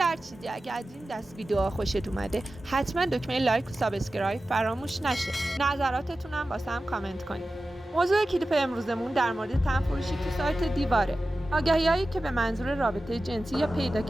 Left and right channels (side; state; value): both; normal; correlation 0.94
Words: چیزی اگه از این دست ویدیوها خوشت اومده حتما دکمه لایک و سابسکرایب فراموش نشه. نظراتتونم واسم کامنت کنید. موضوع کلیپ امروزمون در مورد تنفروشی تو سایت دیواره. آگهی‌هایی که به منظور رابطه جنسی یا پیدا